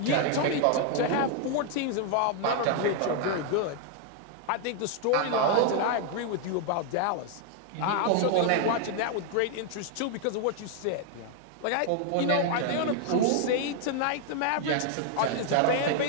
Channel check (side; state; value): both; different; correlation 0.00